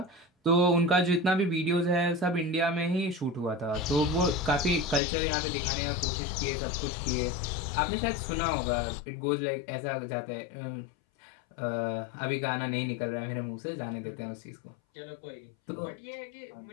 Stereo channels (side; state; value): right; drops out; at 5.0 s